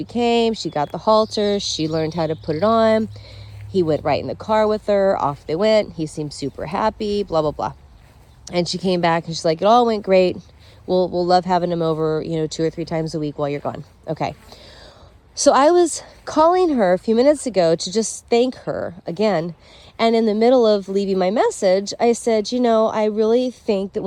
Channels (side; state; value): both; identical; correlation 1.00